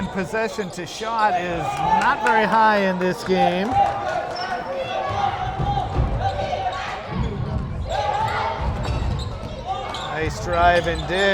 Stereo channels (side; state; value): both; identical; correlation 1.00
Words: possession to shot is not very high in this game. Nice drive and